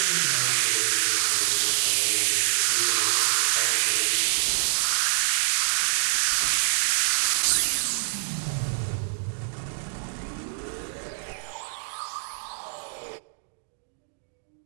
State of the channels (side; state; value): left; silent; digital silence